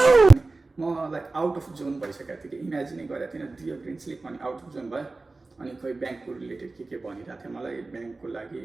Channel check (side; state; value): left; quieter; 3.5 dB